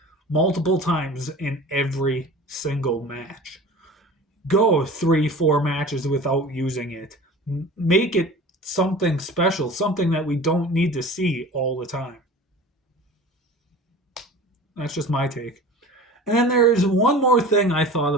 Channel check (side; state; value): both; normal; correlation 0.39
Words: multiple times in every single match. Go 3, 4 matches without using it. Make it something special, something that we don't need to see all the time. That's just my take. And then there's one more thing I thought